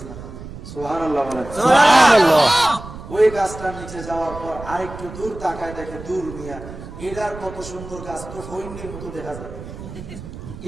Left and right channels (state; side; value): noise; right; rumble, 13 dB below the sound